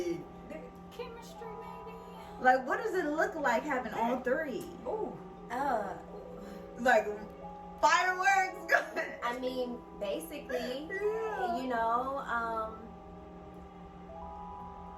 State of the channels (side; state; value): both; identical; correlation 1.00